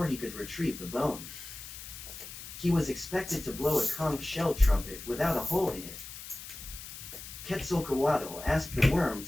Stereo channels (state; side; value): noise; left; hiss, 12 dB below the sound